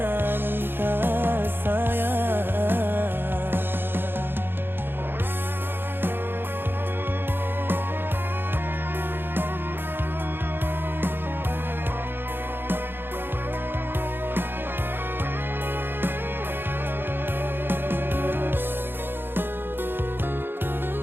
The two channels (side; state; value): left; late; 0.10 ms